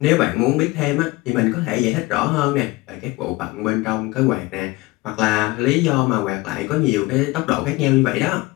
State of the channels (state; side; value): quieter; right; 21.9 dB